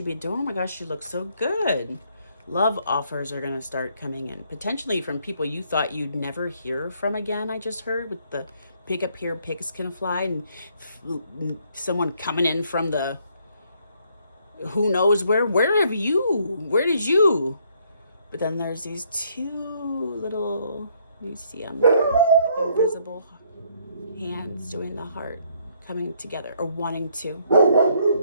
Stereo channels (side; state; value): both; inverted; correlation -0.68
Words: been doing? Oh my gosh, she looks so good. Love offers are going to start coming in, potentially from people you thought you'd never hear from again. I just heard with the pick up here, pigs can fly, and someone coming in from the who knows where did you? But then there's these two little, you see them, like invisible hands doing the heart, coming together or wanting to.